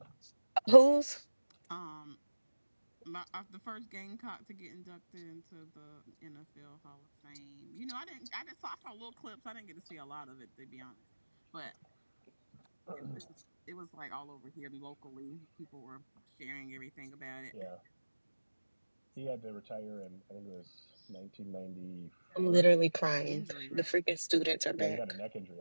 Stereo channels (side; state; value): both; inverted; correlation -1.00